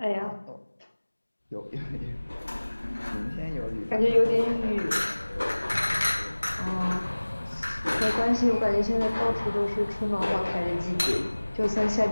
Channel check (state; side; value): inverted; both; correlation -1.00